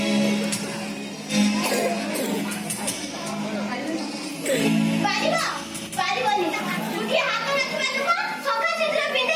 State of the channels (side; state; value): both; identical; correlation 1.00